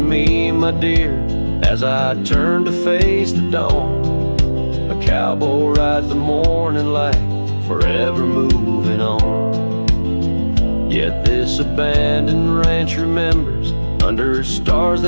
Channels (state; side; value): inverted; both; correlation -1.00